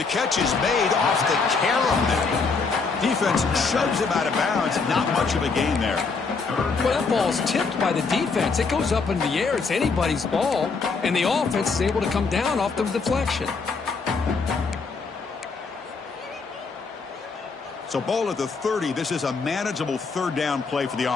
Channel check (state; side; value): quieter; right; 4.6 dB